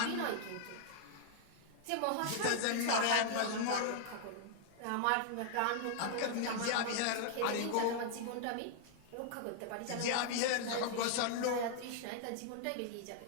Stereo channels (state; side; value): different; both; correlation 0.00